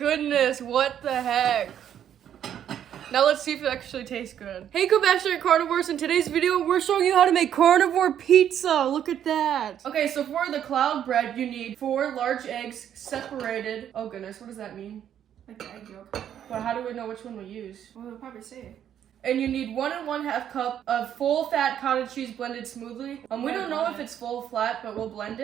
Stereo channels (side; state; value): left; quieter; 9.8 dB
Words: what the heck? Now let's see if it actually tastes good. Hey Compassionate Carnivores, in today's video, we're showing you how to make carnivore pizza. Look at that. Okay, so for the cloud bread, you need 4 large eggs separated. Oh goodness, what does that mean? Like the egg yolk. But how do we know which one we use? Well, they'll probably say it. And you need 1 1/2 cup of full fat cottage cheese blended smoothly. We don't know if it's full flat, but we'll blend